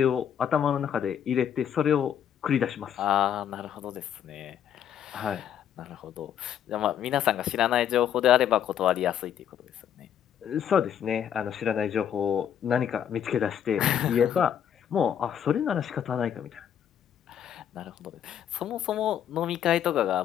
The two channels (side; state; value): right; quieter; 9.3 dB